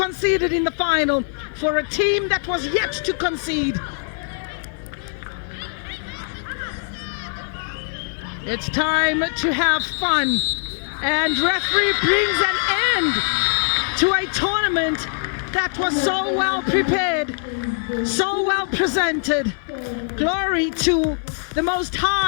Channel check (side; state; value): right; silent; 62 dB below the other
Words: in the final for a team that was yet to concede. It's time to have fun, and referee brings an end to a tournament that was so well prepared, so well presented. Glory to the Most